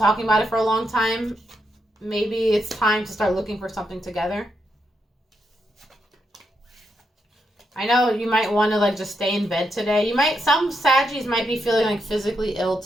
about it for a long time. Maybe it's time to start looking for something together. I know you might want to like just stay in bed today. Some Saggies might be feeling like physically ill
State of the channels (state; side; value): normal; both; correlation 0.82